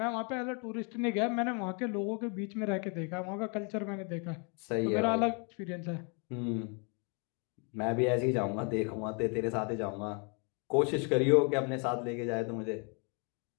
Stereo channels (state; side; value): quieter; right; 36.3 dB